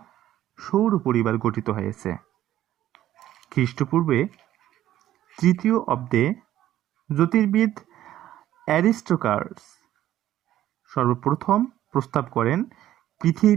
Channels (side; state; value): left; quieter; 12.9 dB